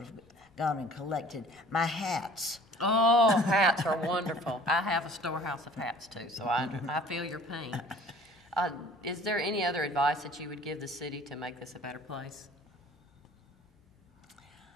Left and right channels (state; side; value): normal; both; correlation 0.49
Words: have gone and collected my hats. Oh, hats are wonderful. I have a storehouse of hats too, so I feel your pain. Is there any other advice that you would give the city to make this a better place?